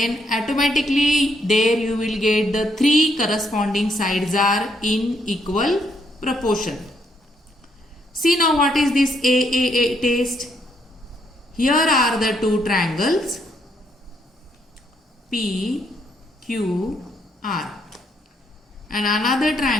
automatically there you will get the 3 corresponding sides are in equal proportion. See now what is this AAA test? Here are the 2 triangles P, Q, R. And another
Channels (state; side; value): normal; both; correlation 0.73